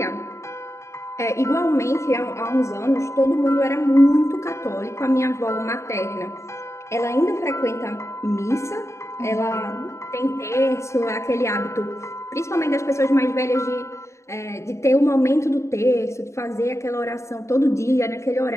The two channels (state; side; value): late; right; 0.14 ms